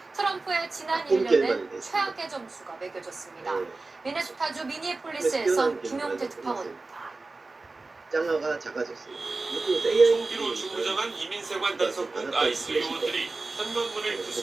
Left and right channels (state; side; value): quieter; left; 3.5 dB